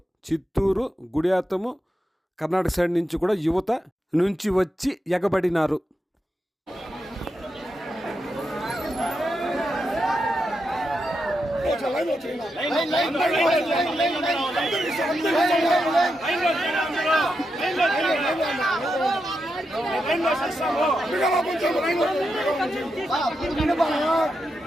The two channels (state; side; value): normal; both; correlation 0.86